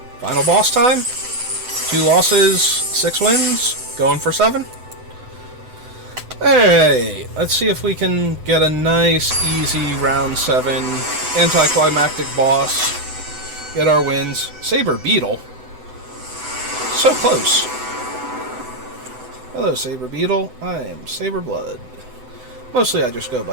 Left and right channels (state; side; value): late; left; 7.9 ms